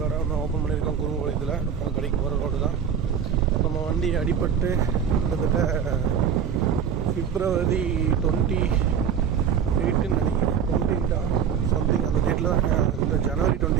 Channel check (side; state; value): left; quieter; 7.7 dB